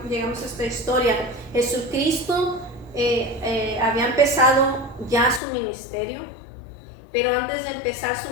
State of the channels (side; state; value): right; drops out; at 5.4 s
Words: a esta historia. Jesucristo había empezado ya su ministerio, pero antes de empezar su